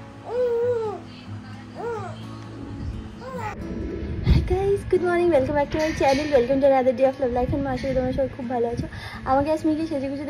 Good morning, welcome back to my channel, welcome to another day of love life. And মাসে তোমার সবাই খুব ভালো আছো। আমাকে স্মিকে সেজে গুজে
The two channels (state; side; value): identical; both; correlation 1.00